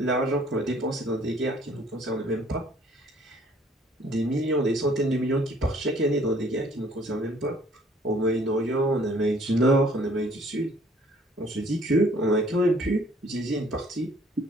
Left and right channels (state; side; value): normal; both; correlation 0.58